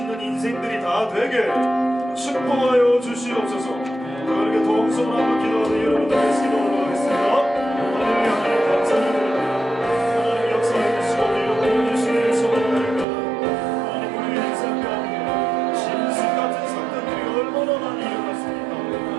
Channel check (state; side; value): drops out; left; at 13.1 s